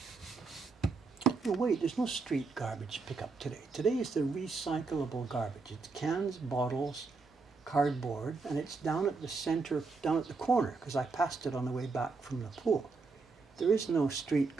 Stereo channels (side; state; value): left; quieter; 4.3 dB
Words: No, wait, there's no street garbage pickup today. Today is the recyclable garbage. It's cans, bottles, cardboard, and it's down at the center, down at the corner, because I passed it on the way back from the pool. There is no street